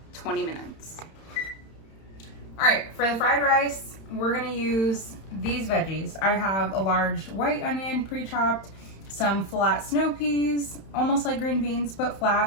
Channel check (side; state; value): right; late; 31 ms